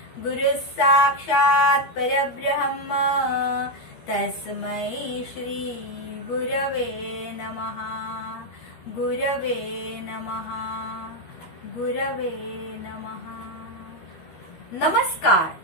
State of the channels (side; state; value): right; late; 13 ms